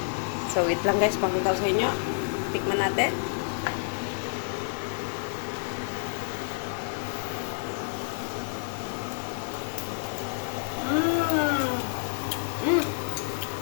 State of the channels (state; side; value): silent; right; digital silence